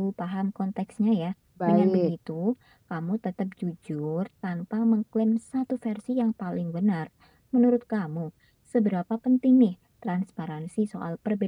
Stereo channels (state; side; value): identical; both; correlation 1.00